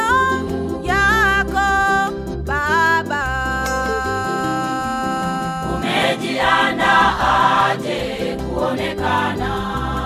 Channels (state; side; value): identical; both; correlation 1.00